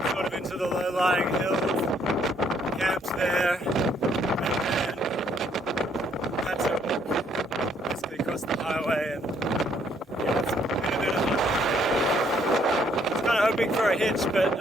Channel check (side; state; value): both; normal; correlation 0.67